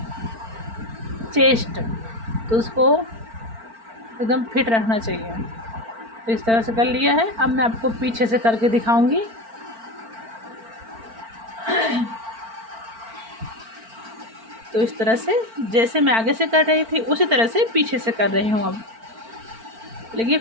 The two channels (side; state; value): left; late; 4.4 ms